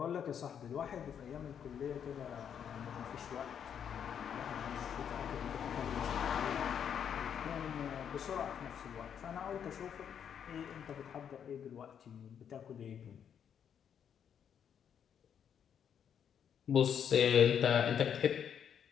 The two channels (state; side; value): quieter; right; 8.3 dB